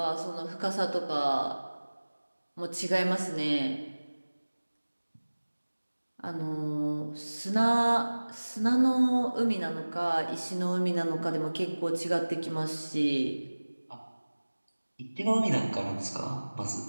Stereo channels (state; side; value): inverted; both; correlation -1.00